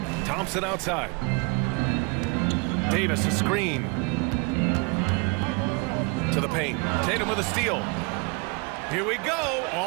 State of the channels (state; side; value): quieter; left; 30.3 dB